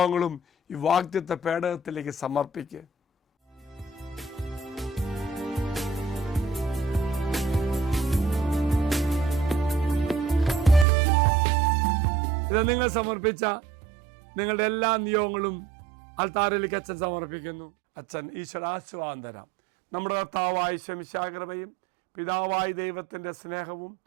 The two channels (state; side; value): drops out; left; at 10.9 s